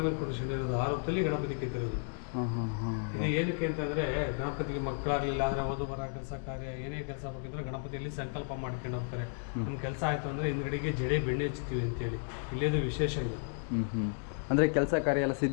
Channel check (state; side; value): silent; right; 56 dB below the other